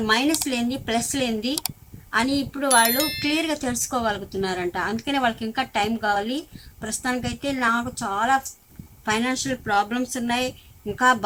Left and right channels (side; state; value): both; identical; correlation 1.00